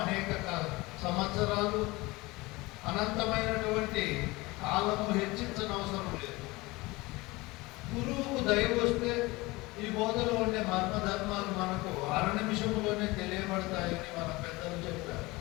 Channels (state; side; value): quieter; right; 22.2 dB